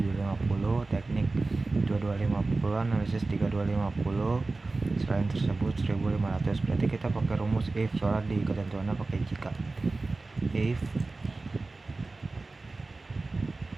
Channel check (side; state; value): left; quieter; 3.5 dB